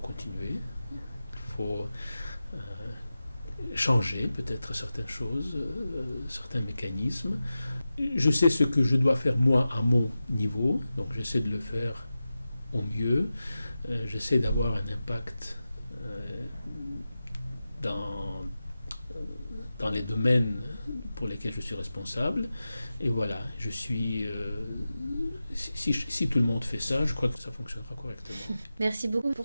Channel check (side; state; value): both; inverted; correlation -0.93